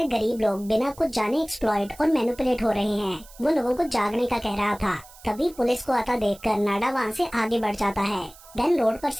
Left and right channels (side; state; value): right; noise; hiss, 22 dB below the sound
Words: गरीब लोग बिना कुछ जाने एक्सप्लॉइट और मैनिपुलेट हो रहे हैं। वो लोगों को जागने का कह रहा था। तभी पुलिस को आता देखकर नाडा वहाँ से आगे बढ़ जाता है। देन रोड पर